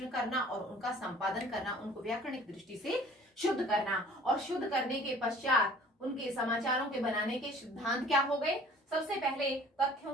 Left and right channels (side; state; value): both; normal; correlation 0.50